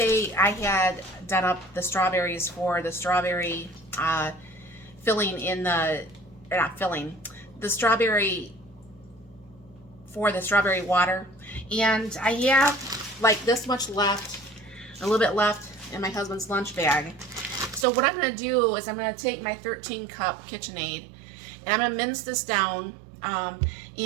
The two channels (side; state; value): left; drops out; at 17.9 s